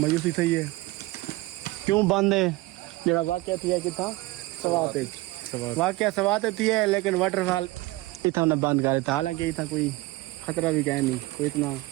थी है। क्यों बंद है? जरा वाक्य थी है कितना सवाते वाक्य सवाते थी है, लेकिन वाटरफॉल इतना ने बंद कर दिया। हालांकि इतना कोई खतरा भी कह नहीं, कोई इतना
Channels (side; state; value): left; quieter; 20.4 dB